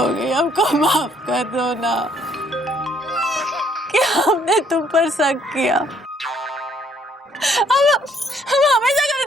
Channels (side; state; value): both; normal; correlation 0.65